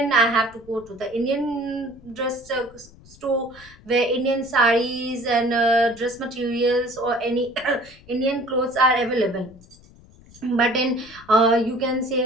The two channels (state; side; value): noise; left; rumble, 24 dB below the sound